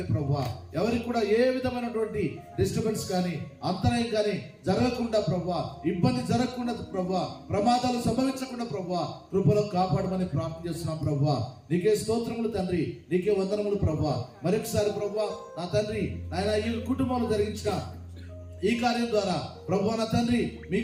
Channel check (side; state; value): both; identical; correlation 1.00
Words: ప్రభువా. ఎవరికి కూడా ఏ విధమైనటువంటి డిస్టర్బెన్స్ కానీ అంతరాయం కానీ జరగకుండా ప్రభువా, ఇబ్బంది జరగకుండా ప్రభువా, ప్రమాదాలు సంభవించకుండా ప్రభువా కృపలో కాపాడమని ప్రార్థన చేస్తున్నాం ప్రభువా. నీకే స్తోత్రములు తండ్రి. నీకే వందనములు ప్రభువా. మరొకసారి ప్రభువా నా తండ్రి నాయన ఈ కుటుంబంలో జరిగించిన ఈ కార్యం ద్వారా ప్రభువా నా తండ్రి